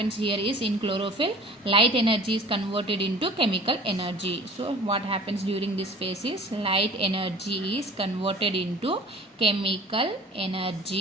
here is, in chlorophyll, light energy is converted into chemical energy. So what happens during this phase is light energy is converted into chemical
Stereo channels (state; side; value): normal; both; correlation 0.44